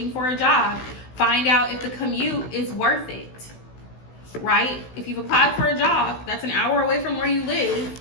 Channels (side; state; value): right; late; 16 ms